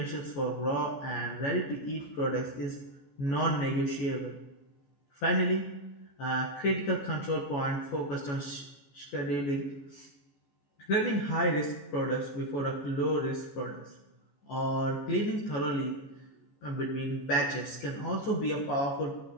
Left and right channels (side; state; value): right; late; 14 ms